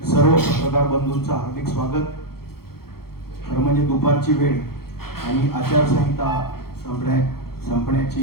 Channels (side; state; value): right; late; 0.94 ms